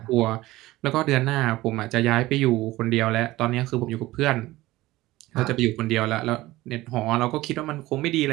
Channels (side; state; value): left; quieter; 17.9 dB